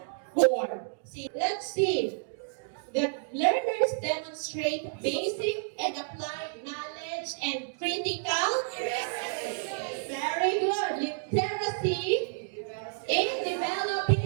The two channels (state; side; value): silent; left; digital silence